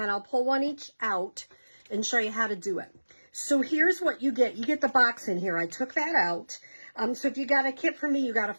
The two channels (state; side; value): inverted; both; correlation -1.00